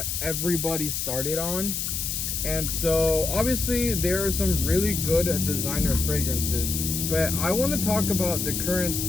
everybody started on. And so obviously there are some really good designer fragrances, but I want to talk about the current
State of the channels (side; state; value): left; noise; hiss, 2 dB below the sound